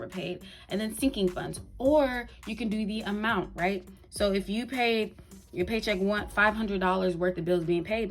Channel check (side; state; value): both; identical; correlation 1.00